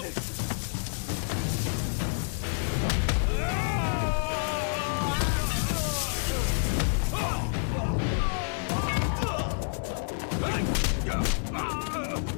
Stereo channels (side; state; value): right; silent; digital silence